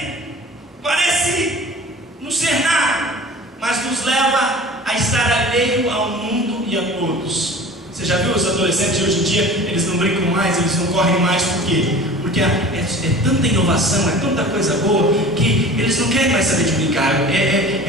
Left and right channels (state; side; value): normal; both; correlation 0.41